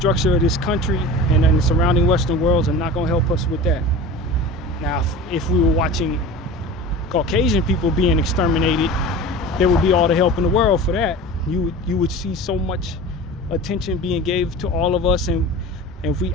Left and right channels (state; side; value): normal; both; correlation 0.35